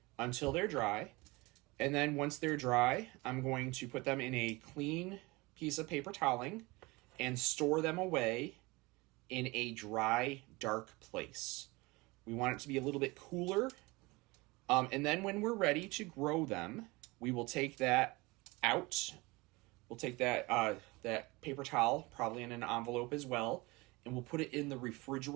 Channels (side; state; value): left; quieter; 23.6 dB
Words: until they're dry. And then once they're dry, I'm going to put them in a clean piece of paper toweling and store them away in a dry, dark place. We want it to be a little bit cooler. And then when we're ready to grow them, we will take that out. We'll take that paper towel, probably in an envelope as well, and we'll put it in the